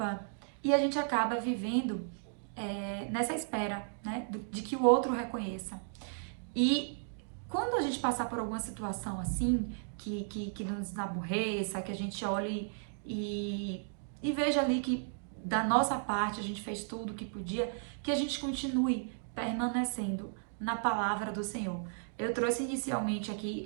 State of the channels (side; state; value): left; silent; digital silence